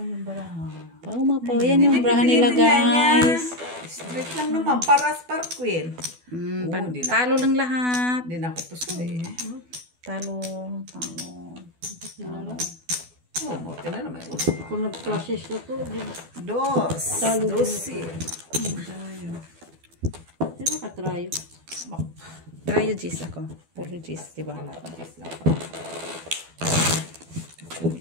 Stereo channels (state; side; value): late; left; 12 ms